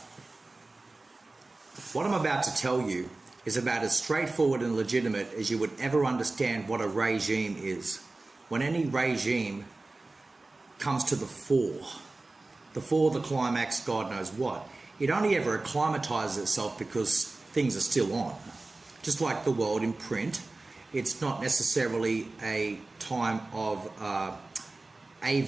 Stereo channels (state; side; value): quieter; left; 3.2 dB